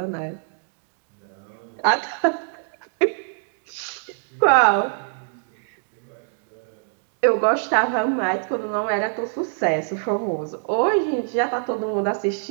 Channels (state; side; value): silent; left; digital silence